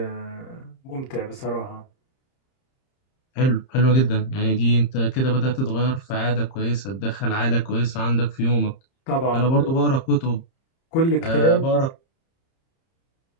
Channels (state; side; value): late; right; 30 ms